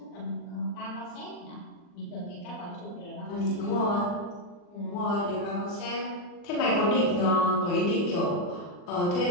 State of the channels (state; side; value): late; right; 40 ms